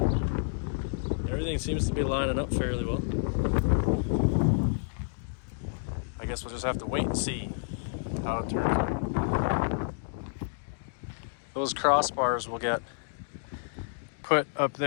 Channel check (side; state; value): right; silent; digital silence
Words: Everything seems to be lining up fairly well. I guess we'll just have to wait and see how it turns out. Those crossbars will get put up